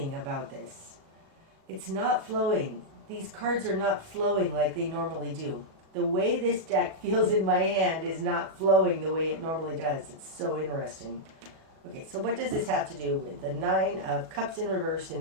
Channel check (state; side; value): late; left; 37 ms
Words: about this. It's not flowing. These cards are not flowing like they normally do. The way this deck feels in my hand is not flowing the way it normally does. It's so interesting. Okay, so what does this have to do with the Nine of Cups in reverse in